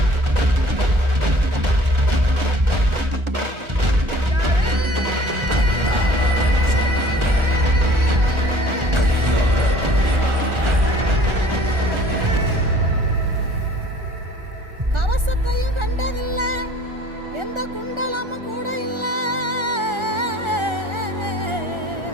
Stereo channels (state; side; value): late; left; 1.4 ms